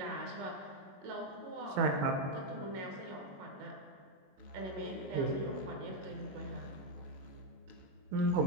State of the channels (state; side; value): late; left; 21 ms